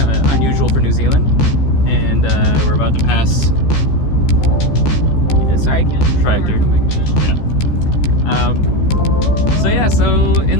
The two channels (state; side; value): late; right; 14 ms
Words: Unusual for New Zealand. And we're about to pass tractor. So in